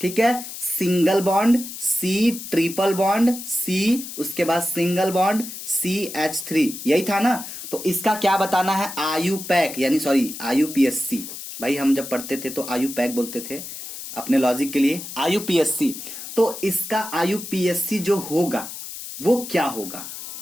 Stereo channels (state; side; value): noise; left; hiss, 10 dB below the sound